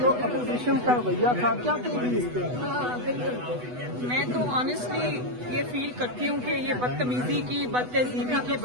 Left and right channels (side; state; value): left; late; 8.1 ms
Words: اپوزیشن کا رویہ تھا کیا کہیں گی اس پہ؟ میں تو آنیسٹلی یہ فیل کرتی ہوں کہ یہ بدتمیزی کی بدتہذیبی کی